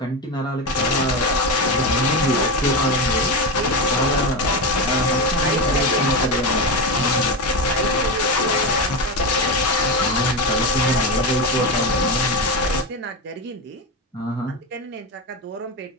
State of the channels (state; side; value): normal; both; correlation 0.17